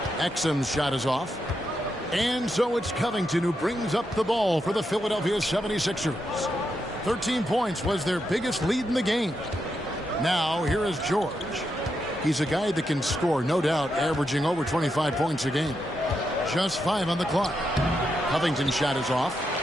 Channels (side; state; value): both; normal; correlation 0.84